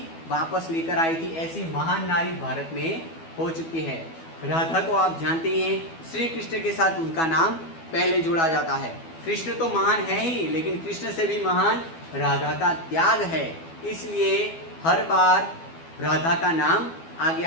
वापस लेकर आई थी, ऐसी महान नारी भारत में हो चुकी है। राधा को आप जानते ही हैं, श्री कृष्ण के साथ उनका नाम पहले जोड़ा जाता है। कृष्ण तो महान है ही, लेकिन कृष्ण से भी महान राधा का त्याग है, इसलिए हर बार राधा का नाम आगे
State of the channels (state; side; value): late; right; 12 ms